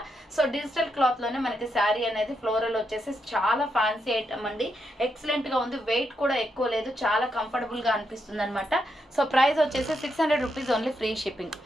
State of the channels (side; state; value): both; normal; correlation 0.82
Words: సో డిజిటల్ క్లాత్ లోనే మనకి శారీ అనేది ఫ్లోరల్ వచ్చేసి చాలా ఫ్యాన్సీ ఐటమ్ అండి. ఎక్సలెంట్ గా ఉంది. వెయిట్ కూడా ఎక్కువ లేదు, చాలా కంఫర్టబుల్ గా అనిపిస్తుంది అనమాట. సో ప్రైస్ వచ్చేసి 600 rupees only free shipping.